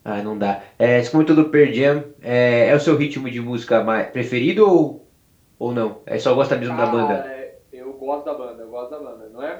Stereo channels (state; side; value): identical; both; correlation 1.00